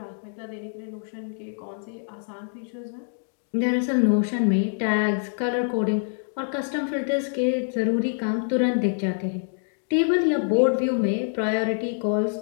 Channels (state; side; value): silent; right; digital silence